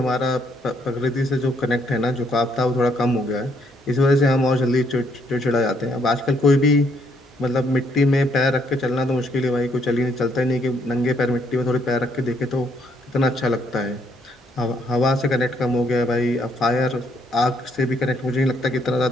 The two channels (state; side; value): normal; both; correlation 0.70